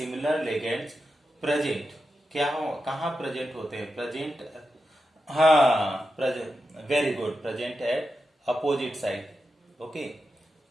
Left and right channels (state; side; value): normal; both; correlation 0.89